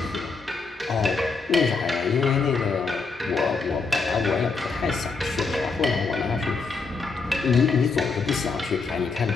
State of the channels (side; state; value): right; quieter; 4.5 dB